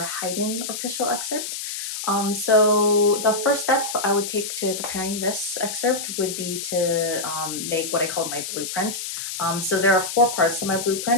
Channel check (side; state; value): left; noise; hiss, 6 dB below the sound